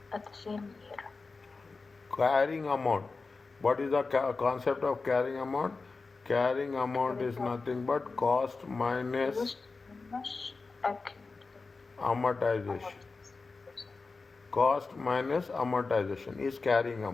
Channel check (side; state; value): right; quieter; 4.1 dB